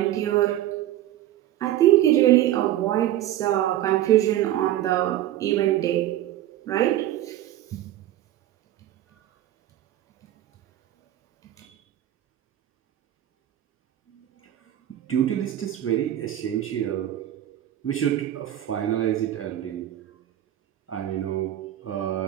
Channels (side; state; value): left; quieter; 13.0 dB